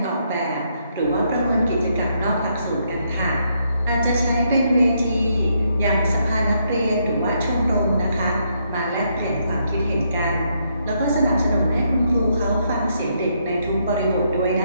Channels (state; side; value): inverted; both; correlation -0.75